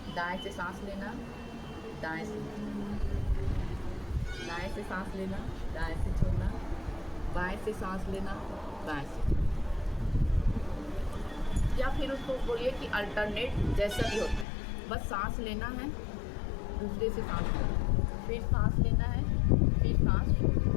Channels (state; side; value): drops out; right; at 14.5 s